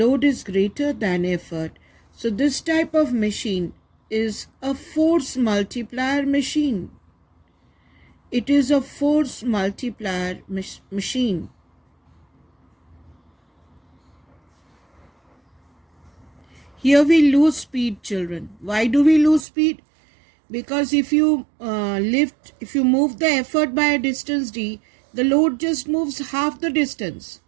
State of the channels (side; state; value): left; drops out; at 19.5 s